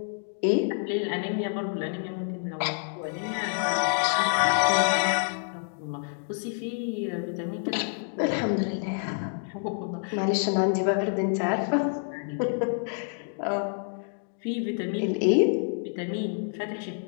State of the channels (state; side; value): silent; right; 59 dB below the other